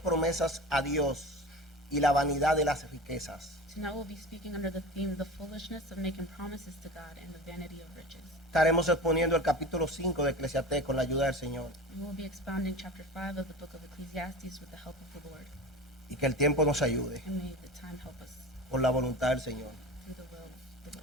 promesas a Dios y la vanidad de las riquezas. Tonight we'll be speaking under the theme, the foolishness of making promises to God and the vanity of riches. Estaremos exponiendo el capítulo 5 de Eclesiastés con la ayuda del Señor We will be expounding chapter 5 of the book of Ecclesiastes with the help of the Lord. y que el tiempo nos ayude And may the time help us por la voluntad del Señor. through the will of the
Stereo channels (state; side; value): normal; both; correlation 0.33